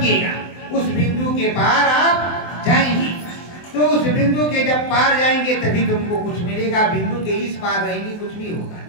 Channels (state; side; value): late; right; 24 ms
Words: उस बिंदु के पार आप जाएंगे, तो उस बिंदु के जब पार जाएंगे तभी तुमको कुछ मिलेगा, बिंदु के इस पार रहेंगे कुछ भी होगा।